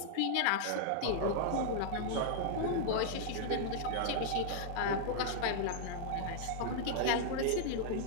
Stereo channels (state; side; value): different; both; correlation -0.01